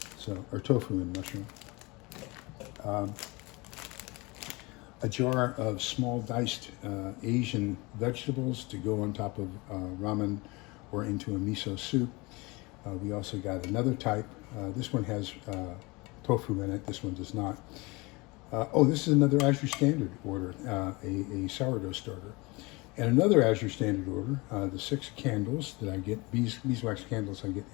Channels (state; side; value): quieter; right; 25.0 dB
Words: So, or tofu and mushroom. A jar of small diced Asian vegetables to go on top of ramen or into a miso soup. We also got another type. This one has tofu in it. This one does not. This is another Azure Standard order, a sourdough starter. And another Azure Standard order, the 6 candles that I get, beeswax candles I get